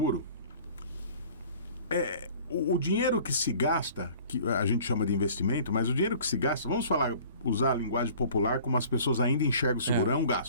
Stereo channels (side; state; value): both; inverted; correlation -0.48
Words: o dinheiro que se gasta, que a gente chama de investimento, mas o dinheiro que se gasta, vamos usar a linguagem popular como as pessoas ainda enxergam o seguro, é um